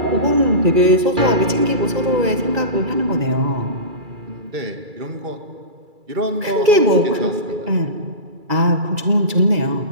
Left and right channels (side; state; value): left; late; 2.3 ms